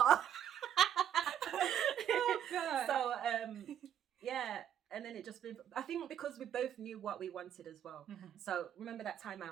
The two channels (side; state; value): left; quieter; 9.8 dB